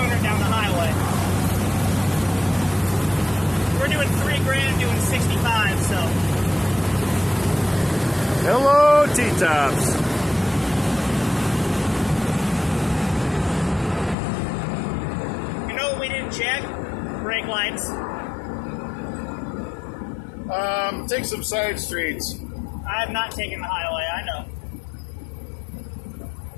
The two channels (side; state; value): right; drops out; at 14.2 s